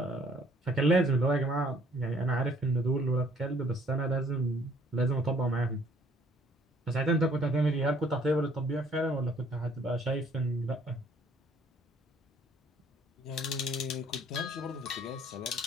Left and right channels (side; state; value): both; normal; correlation 0.60